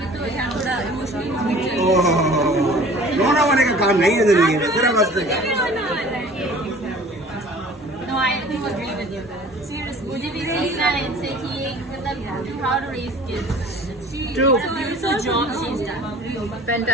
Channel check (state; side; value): normal; both; correlation 0.47